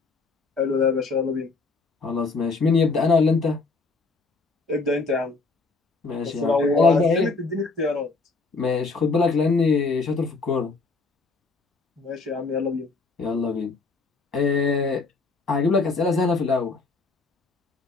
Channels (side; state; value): right; quieter; 4.0 dB